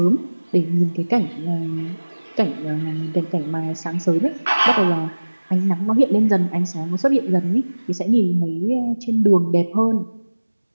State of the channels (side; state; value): both; inverted; correlation -1.00